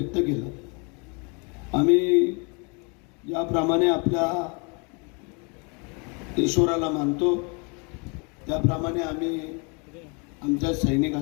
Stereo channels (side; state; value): right; quieter; 33.2 dB